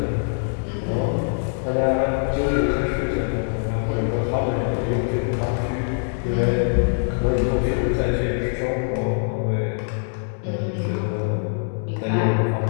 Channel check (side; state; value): right; silent; digital silence